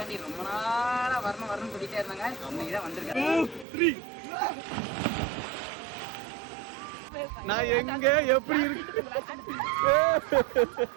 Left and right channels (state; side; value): drops out; left; at 3.7 s